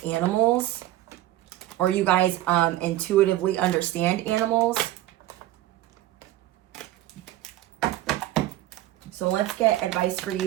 animals, or you guys intuitively understand animals. So let's get advice for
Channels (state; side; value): quieter; left; 14.9 dB